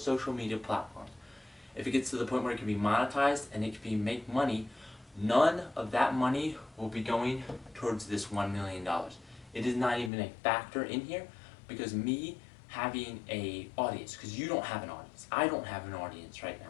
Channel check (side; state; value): right; drops out; at 10.1 s